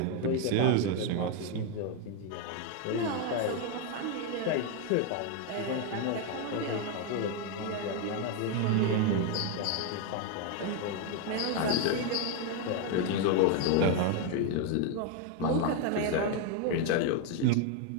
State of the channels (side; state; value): both; different; correlation 0.01